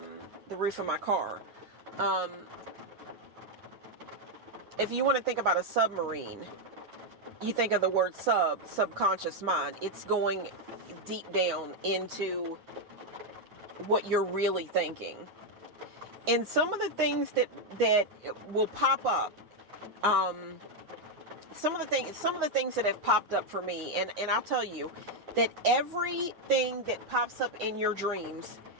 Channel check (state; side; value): late; left; 9.6 ms